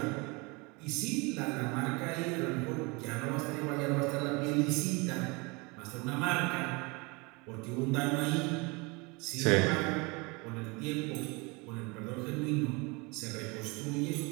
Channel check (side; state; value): left; quieter; 27.6 dB